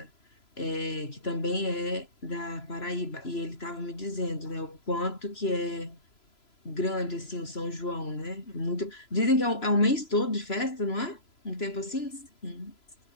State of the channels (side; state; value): right; late; 3.0 ms